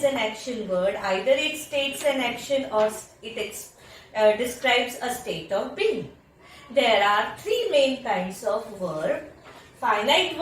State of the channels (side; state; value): both; identical; correlation 1.00